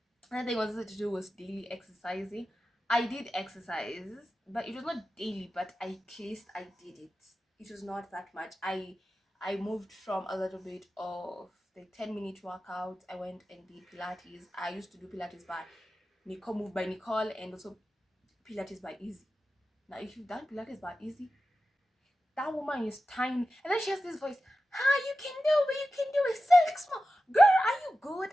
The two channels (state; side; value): normal; both; correlation 0.93